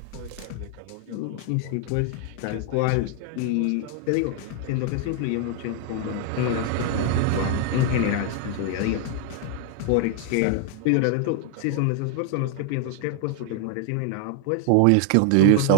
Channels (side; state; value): both; different; correlation 0.00